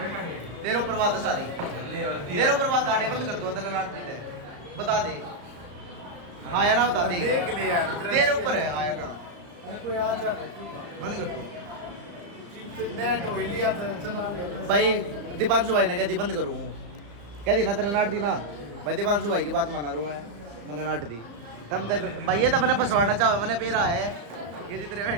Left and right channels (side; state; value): left; late; 35 ms